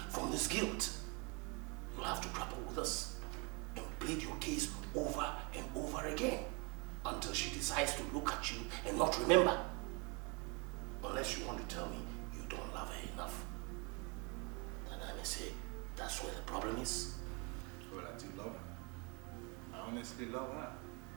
from this guilt. You'll have to grapple with us and plead your case over and over again until she decides to look at you and not remember. Unless you want to tell me you don't love her enough. Then I may say that's where the problem is. Well, I do love her. I honestly love her.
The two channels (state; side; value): quieter; left; 31.0 dB